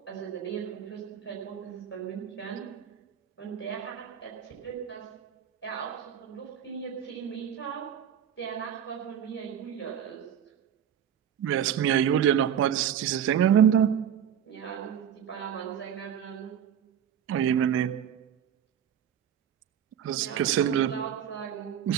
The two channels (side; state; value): left; quieter; 9.1 dB